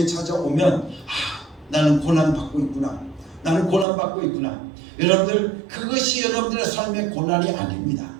찾아오면 나는 고난 받고 있구나, 나는 고난 받고 있구나. 여러분들, 그것이 여러분들의 삶의 고난이 아닙니다.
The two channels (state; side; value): drops out; left; at 3.9 s